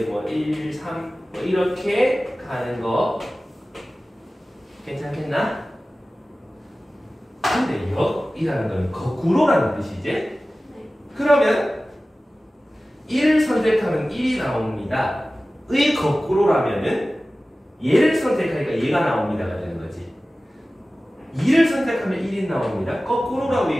뭐 1, 3 뭐 이렇게 가는 거 괜찮겠나? 근데 역이라는 건 거꾸로라는 뜻이지? 그러면 1을 선택하면 1이 나옵니다. 의 거꾸로라면은 얘를 선택하니까 얘가 나옵니다가 되는 거지. 2를 선택하면 1이 나옵니다. 거꾸로라고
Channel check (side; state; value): both; normal; correlation 0.96